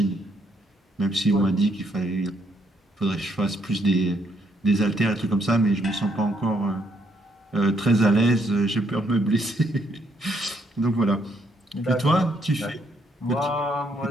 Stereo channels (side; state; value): both; normal; correlation 0.72